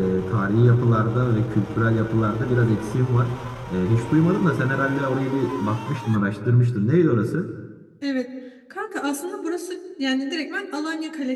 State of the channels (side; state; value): both; identical; correlation 1.00